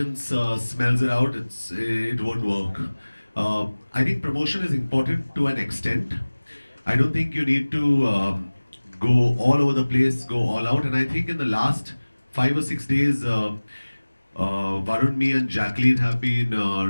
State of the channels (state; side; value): inverted; both; correlation -1.00